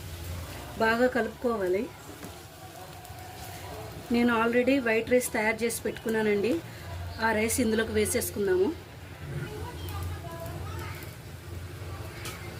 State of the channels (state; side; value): identical; both; correlation 1.00